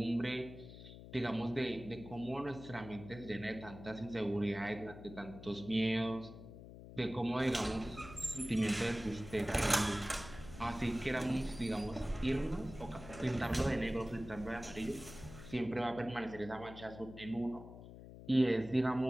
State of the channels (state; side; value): noise; left; hum, 14 dB below the sound